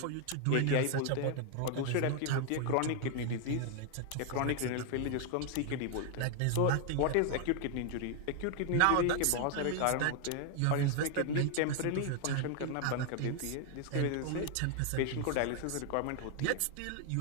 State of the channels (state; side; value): different; both; correlation 0.00